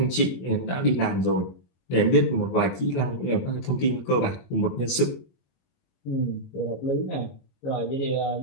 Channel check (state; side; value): late; right; 22 ms